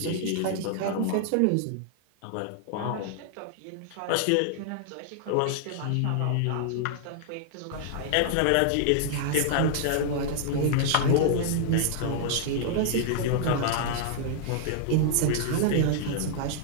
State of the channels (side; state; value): both; different; correlation -0.01